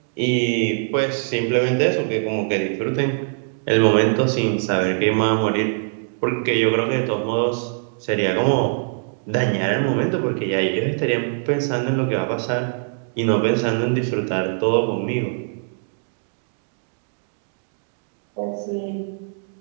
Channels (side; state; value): left; silent; 64 dB below the other